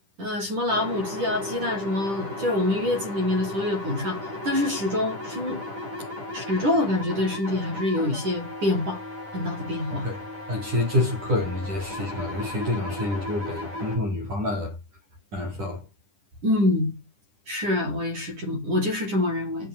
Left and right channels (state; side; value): late; left; 10 ms